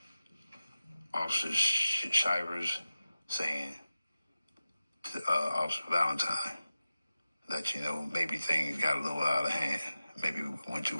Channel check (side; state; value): both; inverted; correlation -0.95